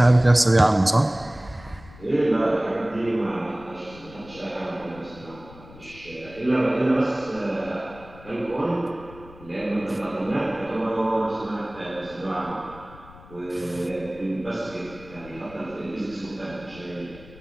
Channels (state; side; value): noise; left; rumble, 19 dB below the sound